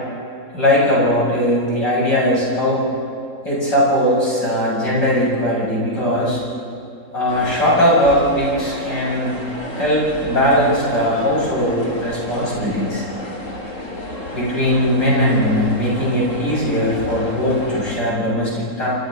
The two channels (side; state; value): right; late; 3.7 ms